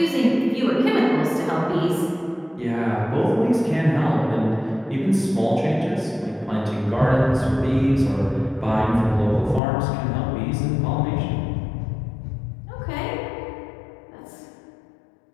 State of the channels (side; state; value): right; drops out; at 9.6 s